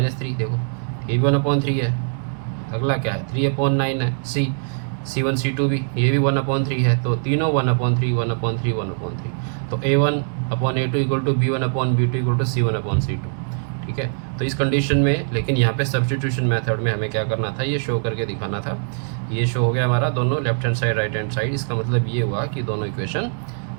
देखो ये भी 1/3 है। अगला क्या है 3/9 है, C1 C2 भी ये भी 1/3 है, तो तीनों 1/3 1/3 1/3। तो A1/A2 equal to B1/B2 equal to C1/C2। ठीक है, तो इस कंडीशन में लेकिन यहाँ पे सब्स्टिट्यूशन मेथड में हमें क्या करना था, ये शो करके दिखाना था। ये शो हो गया हमारा दोनों left hand side right hand side. इसका मतलब ये हुआ कि दोनों इक्वेशन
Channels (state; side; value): silent; left; digital silence